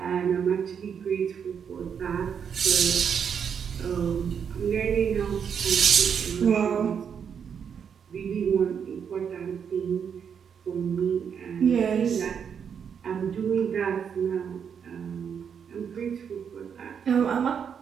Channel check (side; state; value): left; quieter; 7.3 dB